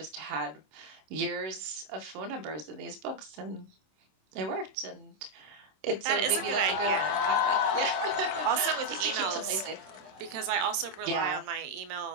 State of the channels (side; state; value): left; late; 26 ms